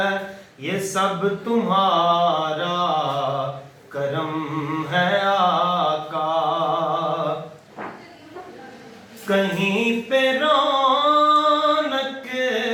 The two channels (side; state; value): both; identical; correlation 1.00